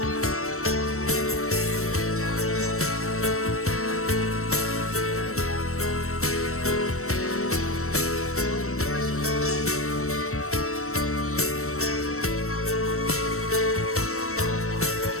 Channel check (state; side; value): late; right; 0.63 ms